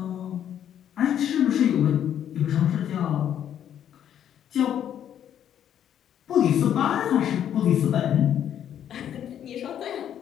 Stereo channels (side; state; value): right; quieter; 9.9 dB